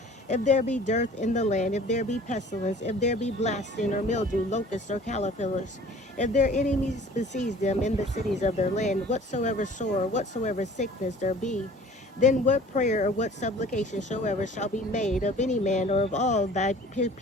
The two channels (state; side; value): normal; both; correlation 0.48